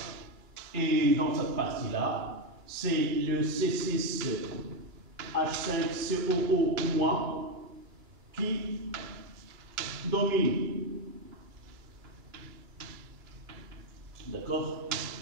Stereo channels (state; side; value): late; left; 2.3 ms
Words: Et dans cette partie-là, c'est le C6H5COO- qui domine. D'accord?